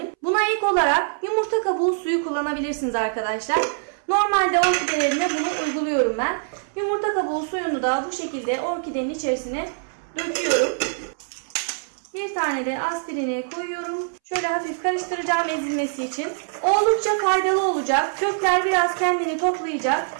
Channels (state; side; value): silent; left; 62 dB below the other